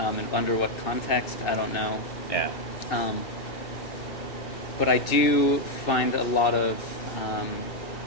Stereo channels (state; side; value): late; right; 2.7 ms